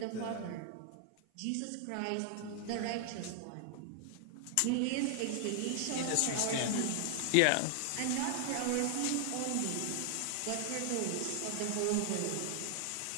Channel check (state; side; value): different; both; correlation 0.00